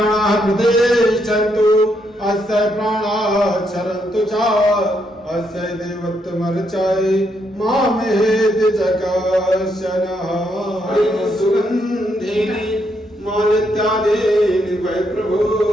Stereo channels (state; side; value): normal; both; correlation 0.77